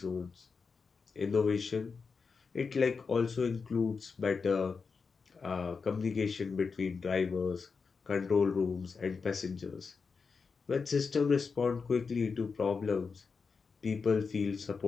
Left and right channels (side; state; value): right; quieter; 5.1 dB